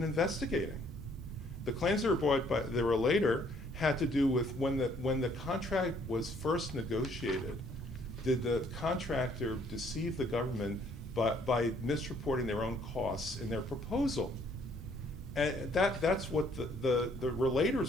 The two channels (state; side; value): normal; both; correlation 0.64